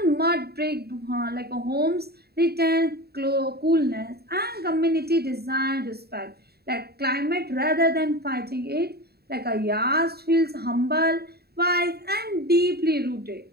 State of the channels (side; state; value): left; late; 0.46 ms